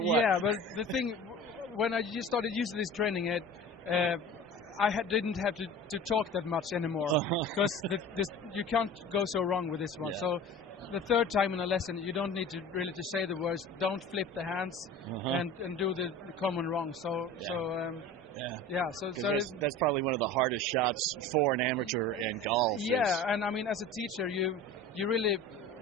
Yeah, but the thing, when I just started using this training aid, didn't have to talk that much anymore because you can't go so wrong with this one. Yeah. So the third time in a lesson, you don't need to really say the words. Don't flip the hands and do the common wrong. So that's probably one of the hardest shots for an amateur in golf. Yeah, and I mean, as a teacher, you really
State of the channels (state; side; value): normal; both; correlation 0.38